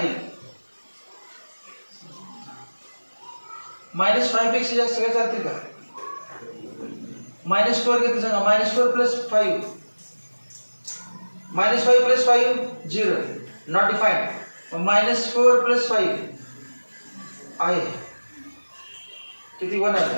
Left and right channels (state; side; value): inverted; both; correlation -1.00